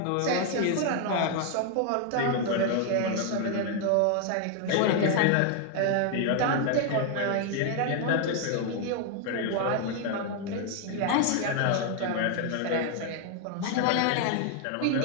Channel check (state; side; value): different; both; correlation 0.01